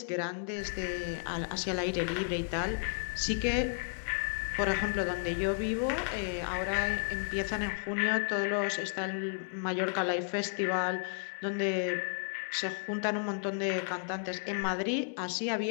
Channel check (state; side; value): silent; right; digital silence